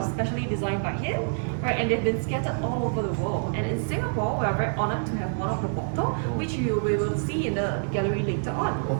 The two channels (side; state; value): left; silent; 60 dB below the other